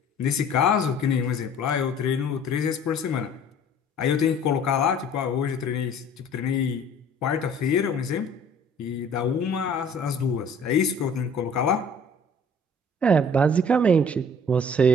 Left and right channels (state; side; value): normal; both; correlation 0.51